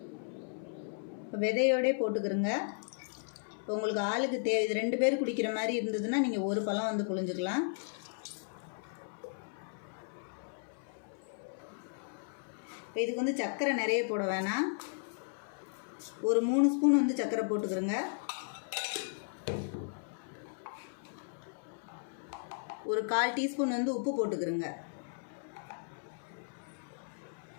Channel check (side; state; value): right; silent; 54 dB below the other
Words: இப்போ விதையோடே போட்டுக்கிறோங்க. இப்போ உங்களுக்கு ஆளுக்கு இது 2 பேர் குடிக்கிற மாதிரி இருந்ததுன்னா நீங்கள் ஒரு பழம் வந்து புழிஞ்சுக்கலாம். இப்போ இதுக்கு வந்து சர்க்கரை நிறைய போட வேணாம். ஒரு 3 ஸ்பூன் வந்து சர்க்கரை போட்டுக்கிறோங்க. ஒரு 1/4 டீஸ்பூன் வந்து உப்பு போட்டுக்கிறோங்க.